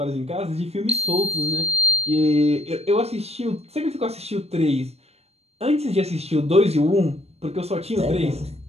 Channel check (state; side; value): late; left; 0.30 ms